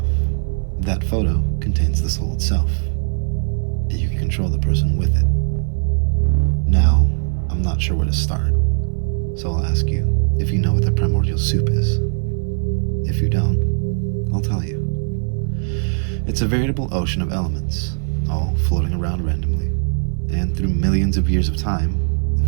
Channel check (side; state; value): left; silent; 60 dB below the other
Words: that photo contains the soul itself, and you can control the person with it. Now, I'm not sure where to start, so I'll ask you if you know what the primordial soup is. If you don't, I'll tell you. It's a veritable ocean of elements, all floating around randomly, and through millions of years of time,